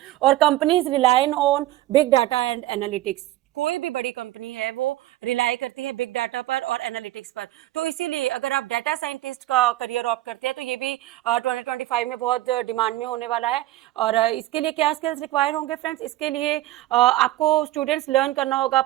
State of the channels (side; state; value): left; quieter; 15.5 dB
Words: और companies rely on big data and analytics. कोई भी बड़ी कंपनी है वो रिलाई करती है बिग डाटा पर और एनालिटिक्स पर। तो इसीलिए अगर आप डाटा साइंटिस्ट का करियर ऑप्ट करते हैं तो ये भी 2025 में बहुत डिमांड में होने वाला है। और इसके लिए क्या स्किल्स रिक्वायर होंगे फ्रेंड्स? इसके लिए आपको स्टूडेंट्स लर्न करना होगा